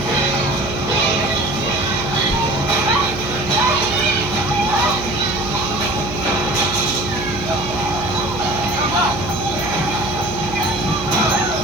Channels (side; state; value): right; noise; hum, 9 dB below the sound